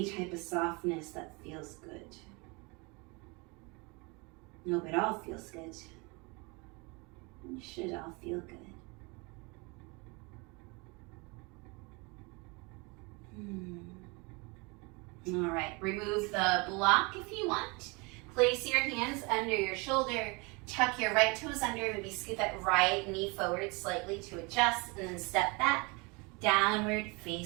type of softness that feels good. Nope, it all feels good. It should all feel good. All right, remove the block if you want. Place your hands under your shoulder. Tuck your right toes under, maybe scoot that right knee forward slightly to adjust, and then step back, downward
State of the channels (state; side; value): quieter; left; 28.4 dB